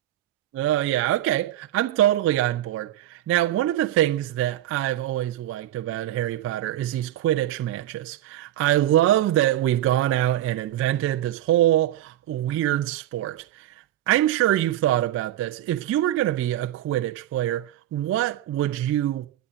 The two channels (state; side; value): quieter; left; 13.3 dB